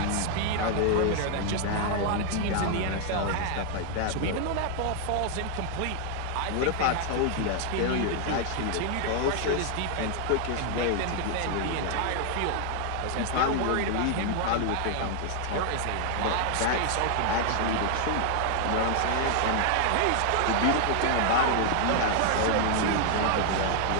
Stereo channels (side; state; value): both; different; correlation 0.00